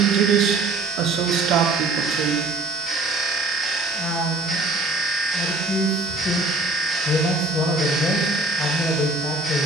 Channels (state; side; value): quieter; left; 3.0 dB